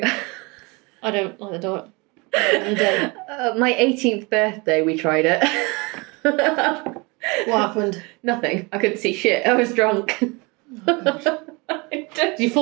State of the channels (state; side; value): quieter; left; 27.4 dB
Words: I don't like the dark. In the day. My 18th birthday, we tried it. What happened? Nothing. I couldn't see shit. I was drunk. Oh, did you